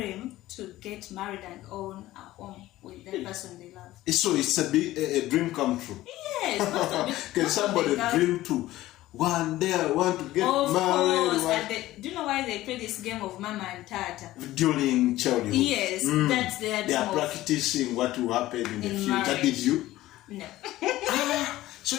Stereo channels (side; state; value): right; quieter; 16.0 dB